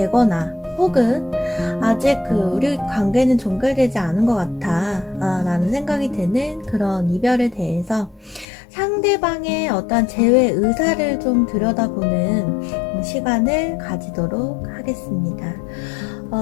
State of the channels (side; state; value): right; drops out; at 8.5 s